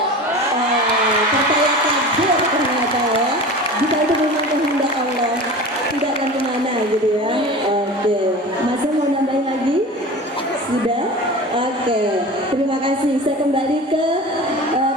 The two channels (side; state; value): both; normal; correlation 0.34